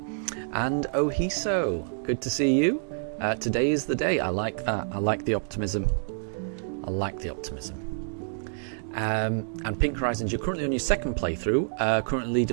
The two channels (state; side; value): silent; left; digital silence